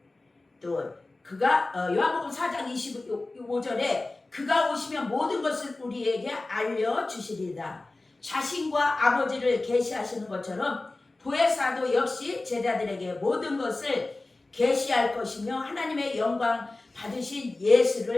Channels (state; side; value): quieter; right; 3.1 dB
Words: 또 그가 요한복음 4장 25절에 그가 오시면 모든 것을 우리에게 알려주시리다. 자신과 아버지를 계시하시는 것처럼 보혜사도 역시 제자들에게 모든 것을 계시할 것이며 하나님의 영광 받으신